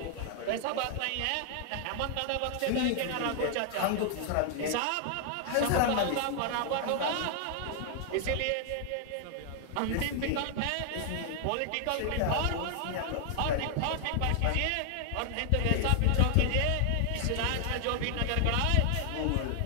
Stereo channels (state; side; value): different; both; correlation 0.00